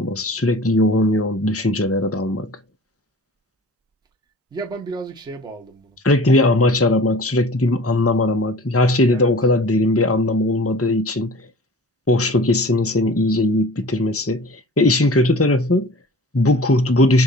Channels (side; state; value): both; normal; correlation 0.42